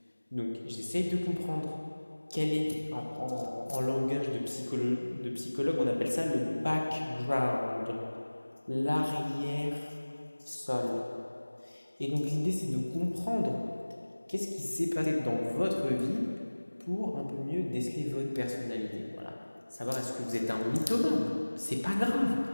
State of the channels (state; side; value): inverted; both; correlation -1.00